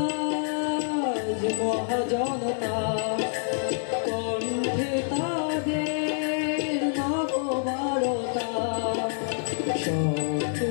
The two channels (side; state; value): right; silent; digital silence